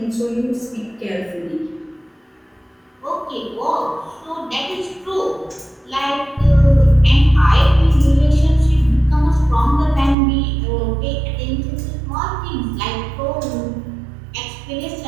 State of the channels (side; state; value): left; drops out; at 10.2 s